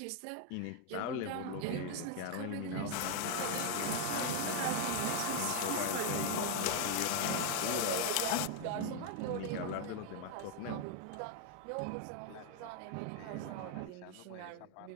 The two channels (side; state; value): both; different; correlation 0.01